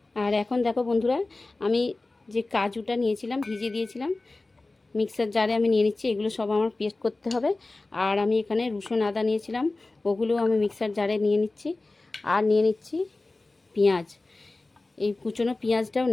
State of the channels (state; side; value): quieter; right; 3.2 dB